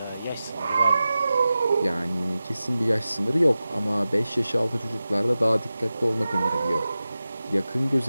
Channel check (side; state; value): both; inverted; correlation -0.94